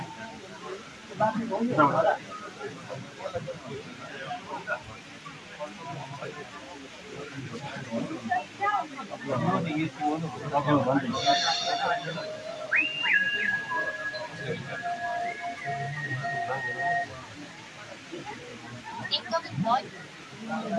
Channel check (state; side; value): identical; both; correlation 1.00